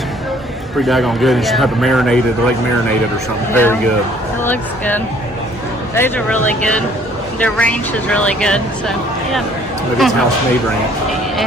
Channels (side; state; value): both; normal; correlation 0.58